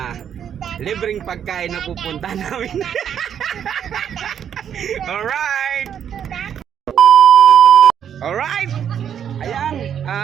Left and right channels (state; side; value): quieter; left; 8.8 dB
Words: libreng pagkain na pupunta namin. Alright. Ayan,